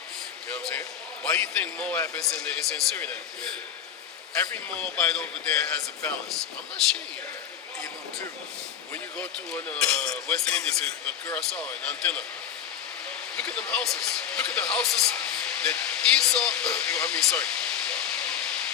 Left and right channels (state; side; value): quieter; right; 9.0 dB